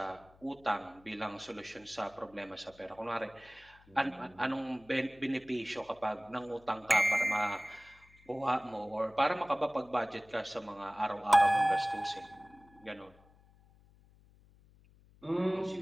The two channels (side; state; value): left; noise; hum, 27 dB below the sound